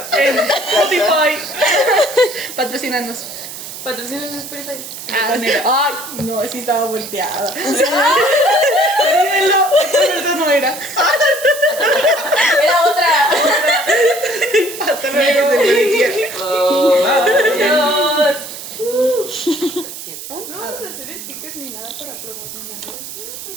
En Spotify. Patrocínanos. Patrocinan en Spotify. Ay, no, sí estaba volteada. Olvídenlo, esa no era. Era otra. Hasta luego, se Adiós. No vamos a hacer stickers ni nada para promocionarlos.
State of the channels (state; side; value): noise; right; hiss, 11 dB below the sound